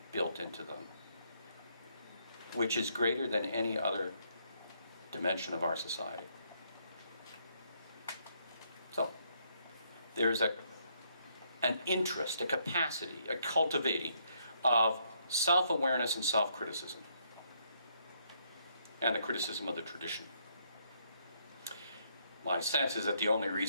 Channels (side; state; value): both; inverted; correlation -0.72